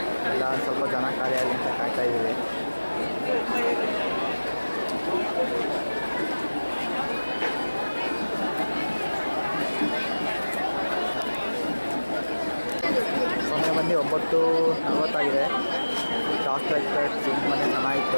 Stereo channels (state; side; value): inverted; both; correlation -1.00